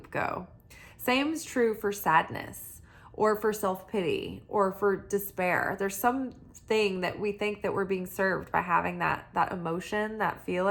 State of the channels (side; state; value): both; identical; correlation 1.00